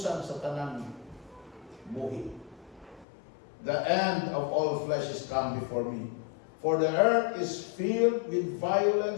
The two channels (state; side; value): drops out; right; at 3.1 s